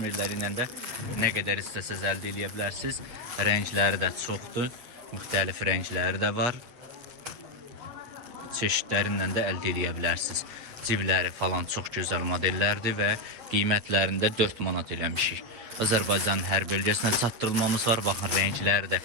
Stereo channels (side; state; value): left; late; 8.5 ms